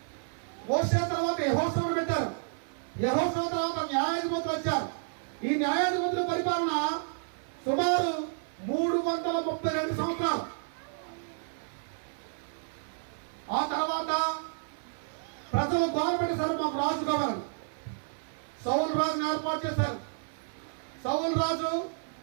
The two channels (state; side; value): silent; left; 57 dB below the other